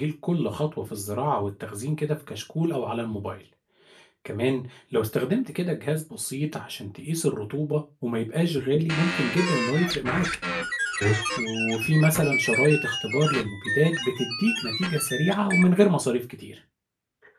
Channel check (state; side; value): identical; both; correlation 1.00